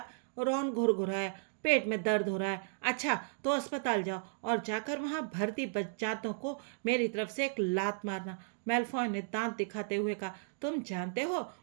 रॉन घुरघुराया, पेट में दर्द हो रहा है। अच्छा तो अस्पताल जाओ और जाकर वहां भर्ती बच्चातों को मेरी तरफ से एक लात मारना। मेलफॉय ने दांत दिखाते हुए कहा, तुम जानते हो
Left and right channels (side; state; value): left; silent; digital silence